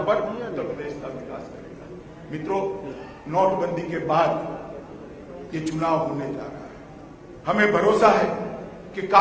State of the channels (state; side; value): identical; both; correlation 1.00